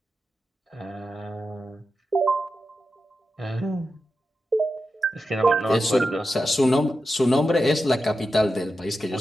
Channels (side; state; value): both; normal; correlation 0.90